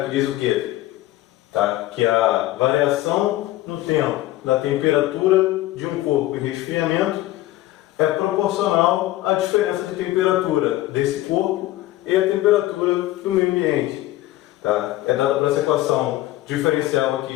diz o quê? Que a variação no tempo da temperatura de um corpo em resfriamento é proporcional à diferença de temperatura desse corpo e à temperatura do meio ambiente. É dada por essa equação diferencial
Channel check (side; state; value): right; quieter; 16.0 dB